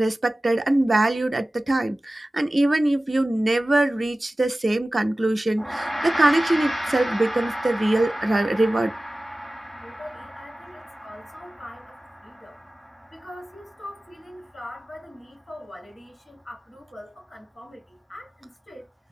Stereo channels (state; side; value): normal; both; correlation 0.97